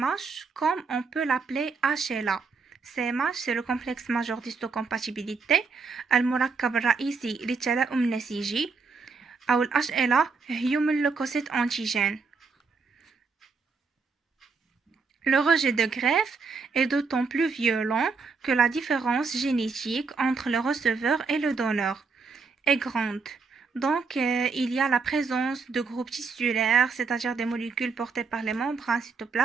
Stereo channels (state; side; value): quieter; left; 4.8 dB